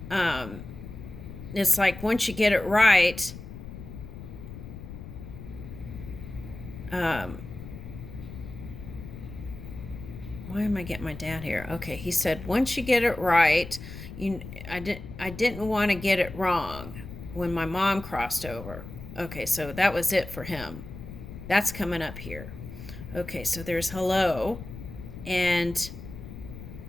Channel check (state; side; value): noise; left; rumble, 12 dB below the sound